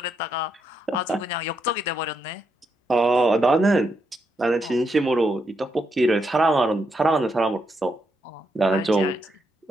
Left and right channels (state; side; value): normal; both; correlation 0.80